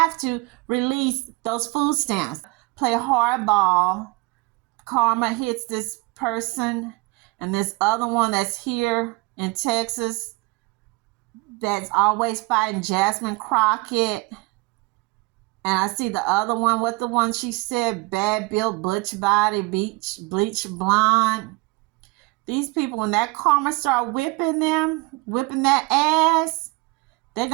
to release those food stamps. Play hardball. Karma hits this person, and this other one that's here in Texas that's always fighting Jasmine Crockett. And I see the other one, what the one she said, bad built, butch body, bleach blonde. These people, when that karma start whipping that ass,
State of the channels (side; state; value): left; quieter; 25.2 dB